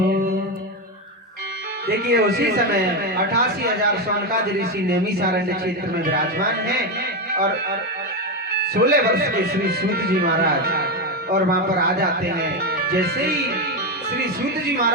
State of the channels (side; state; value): both; normal; correlation 0.11